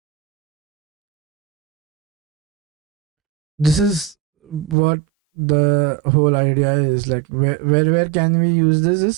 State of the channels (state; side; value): drops out; left; at 4.8 s